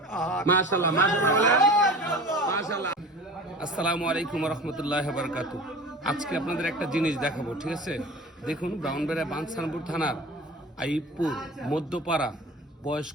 আহাদ। মাশাআল্লাহ মাশাআল্লাহ মাশাআল্লাহ। আসসালামু আলাইকুম ওয়া রাহমাতুল্লাহি ওয়া বারাকাতুহু। আজকে আপনাদের একটা জিনিস দেখাবো, ঠিক আছে? দেখুন, ব্রাউনবেড়া বাঞ্ছানপুর থানার আইবপুর মধ্যপাড়া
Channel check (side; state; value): both; normal; correlation 0.37